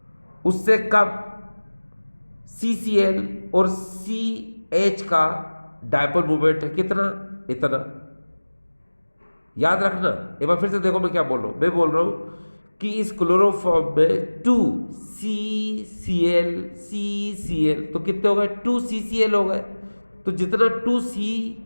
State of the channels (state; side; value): inverted; both; correlation -1.00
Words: उससे कम CCl और CH का डायपोल मोमेंट है कितना, इतना। याद रखना, एक बार फिर से देखो मैं क्या बोल रहा हूं, मैं बोल रहा हूं कि इस क्लोरोफॉर्म में 2CCl CCl तो कितने हो गए, 2CCl हो गए। तो जितना